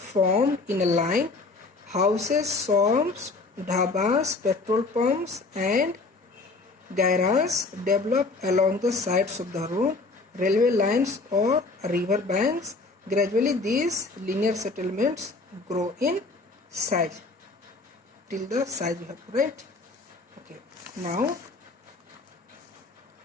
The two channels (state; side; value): quieter; right; 3.6 dB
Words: in a line. Houses, shops, dhabas, petrol pumps and garages develop along the sides of the road, railway lines or river banks. Gradually these linear settlements grow in size till the size you have to write. Okay, now